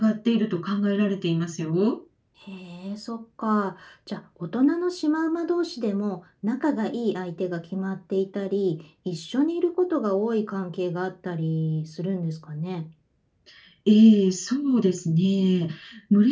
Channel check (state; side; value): identical; both; correlation 1.00